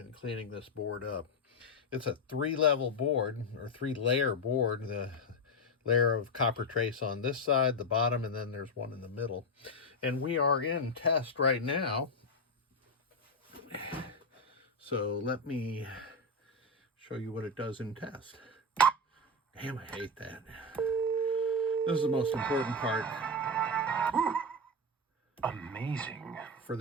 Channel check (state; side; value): normal; both; correlation 0.10